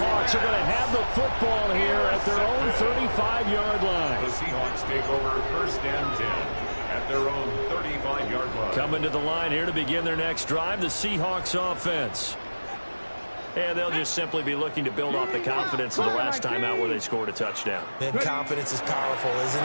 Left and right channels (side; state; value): both; inverted; correlation -1.00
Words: are going to have the football here at their own 35-yard line. The Seahawks take over 1st and 10 at their own 35-yard line. Coming to the line here to begin their next drive, the Seahawks offense. And they'll just simply be looking to build off the confidence of the last time out where they scored a touchdown. And confidence is powerful, isn't